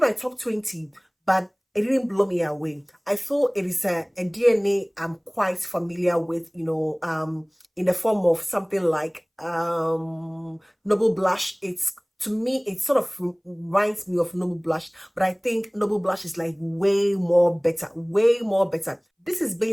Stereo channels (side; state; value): both; identical; correlation 1.00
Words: my top 20, but it didn't blow me away. I feel it is a DNA I'm quite familiar with, in the form of something like Noble Blush. To me, it sort of reminds me of Noble Blush, but I think Noble Blush is like way more better. This is